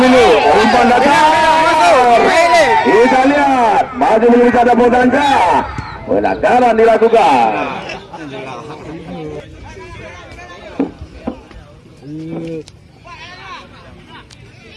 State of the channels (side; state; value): both; identical; correlation 1.00